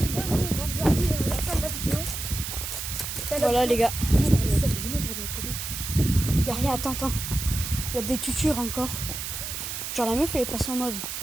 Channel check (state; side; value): noise; right; hiss, 5 dB below the sound